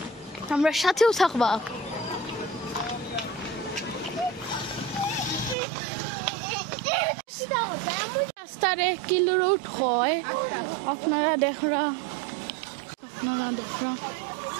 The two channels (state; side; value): drops out; left; at 5.6 s